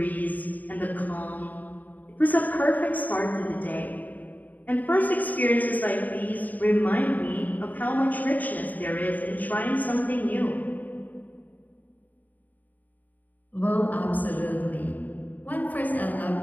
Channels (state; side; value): late; right; 0.081 ms